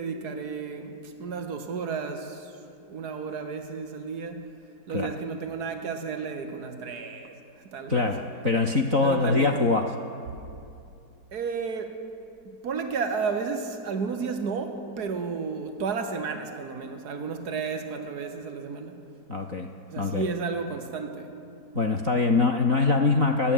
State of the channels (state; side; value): late; left; 4.7 ms